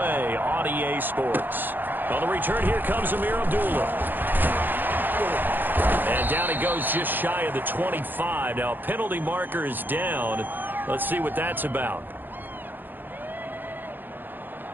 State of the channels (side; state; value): left; late; 0.091 ms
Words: on EA Sports. On the return, here comes Amir Abdullah. And down he goes just shy of the 25. Now, a penalty marker is down. Let's see what that's about.